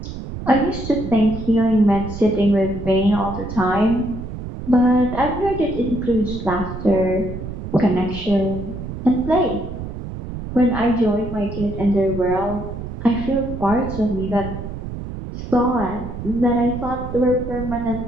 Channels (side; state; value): right; noise; rumble, 8 dB below the sound